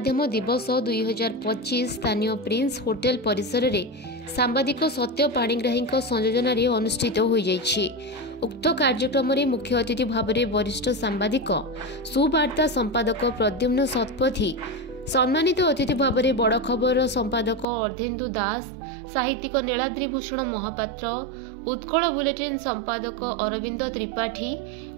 दिवस 2025 स्थानीय प्रिंस होटेल परिसर में सांबादिक सत्य पाणिग्राही संयोजन अनुष्ठित हो जाइछि। उक्त कार्यक्रम में मुख्य अतिथि भाव में वरिष्ठ सांबादिक सुवार्ता संपादक प्रद्युम्न शतपथी, सम्मानित अतिथि भाव में बड़ खबर संपादक अर्धेन्दु दास, साहित्यिक नीलाद्रिभूषण महापात्र, उत्कल बुलेटिन संपादक अरविंद त्रिपाठी,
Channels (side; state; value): left; drops out; at 17.7 s